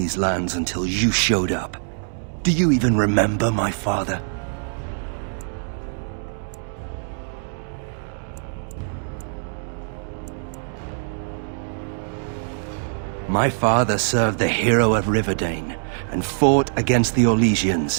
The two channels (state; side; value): silent; left; 63 dB below the other